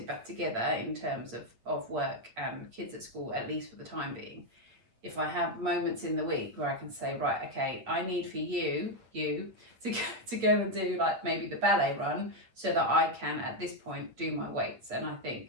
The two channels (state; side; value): late; left; 8.6 ms